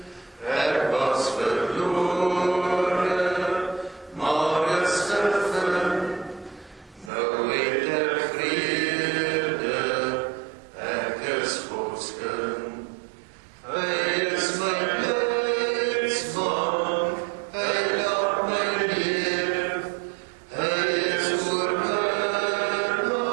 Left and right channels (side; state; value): left; drops out; at 7.1 s